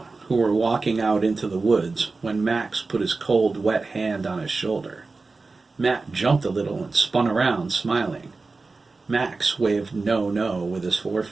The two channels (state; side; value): quieter; left; 3.8 dB